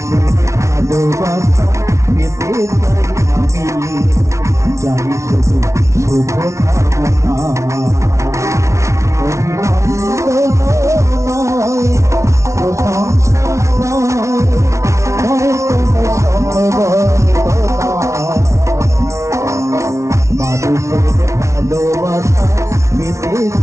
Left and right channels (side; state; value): left; late; 0.14 ms